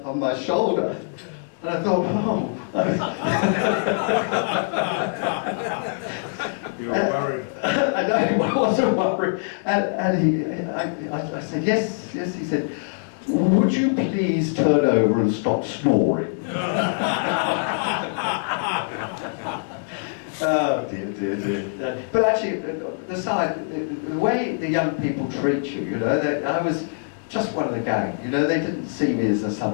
my shoulder. And I thought, oh. You were worried. I know, I wasn't worried. And I said, yes, yes. He said, would you please turn over and stop snoring? Oh, dear, dear, dear. But actually, the way the young people treat you, you know, I was just one of the gang, you know, they didn't see me as some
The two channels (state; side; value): silent; right; 63 dB below the other